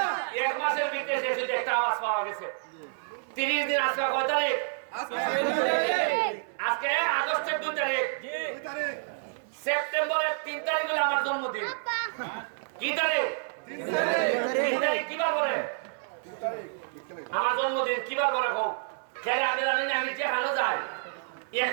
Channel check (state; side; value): silent; left; digital silence